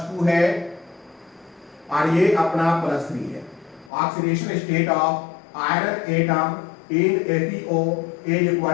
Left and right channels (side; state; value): right; drops out; at 3.9 s